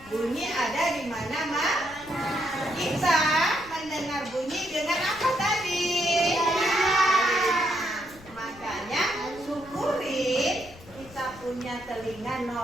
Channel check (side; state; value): left; noise; rumble, 21 dB below the sound